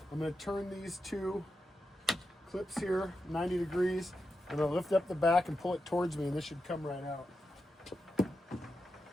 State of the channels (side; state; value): both; normal; correlation 0.88